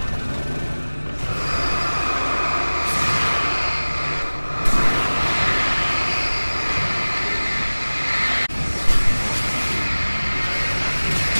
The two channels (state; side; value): inverted; both; correlation -1.00